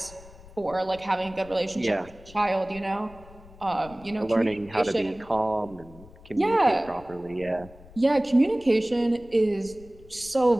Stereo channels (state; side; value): noise; left; rumble, 21 dB below the sound